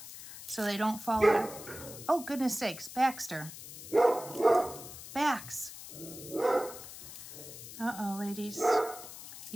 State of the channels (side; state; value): left; noise; hiss, 13 dB below the sound